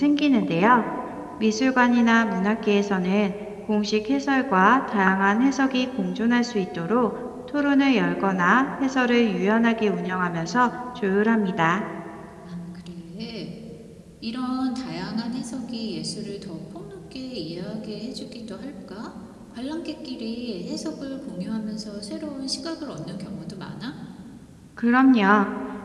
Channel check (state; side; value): identical; both; correlation 1.00